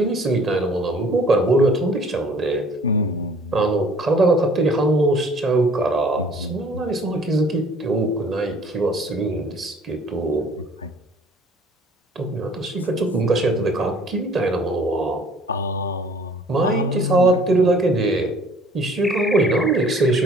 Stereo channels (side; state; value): both; normal; correlation 0.54